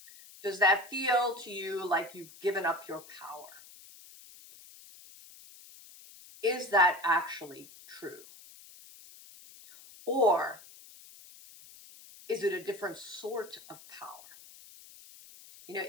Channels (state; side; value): noise; left; hiss, 20 dB below the sound